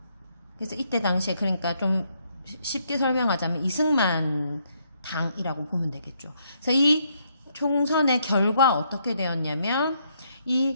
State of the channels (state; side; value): inverted; both; correlation -0.73